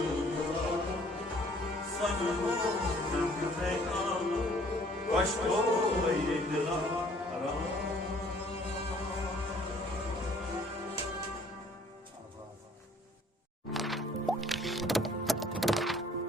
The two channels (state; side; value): normal; both; correlation 0.58